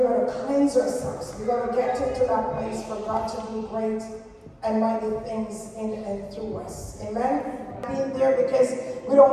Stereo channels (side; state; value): both; identical; correlation 1.00